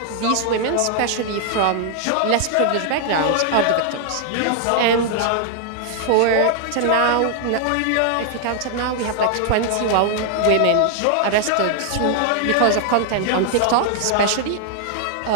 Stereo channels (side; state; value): both; different; correlation 0.00